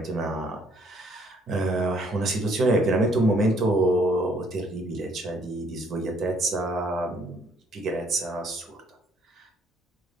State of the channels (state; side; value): normal; both; correlation 0.64